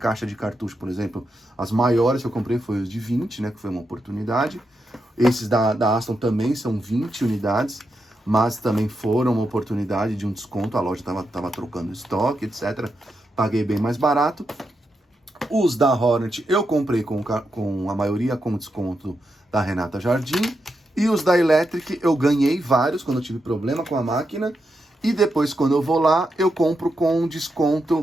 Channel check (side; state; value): both; normal; correlation 0.85